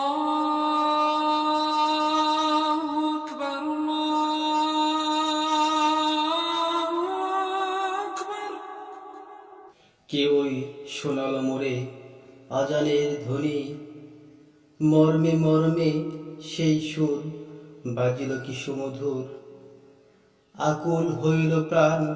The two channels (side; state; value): both; identical; correlation 1.00